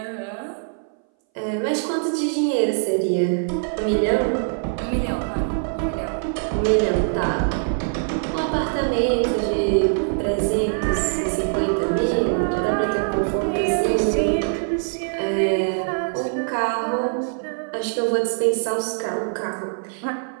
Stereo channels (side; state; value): left; silent; 60 dB below the other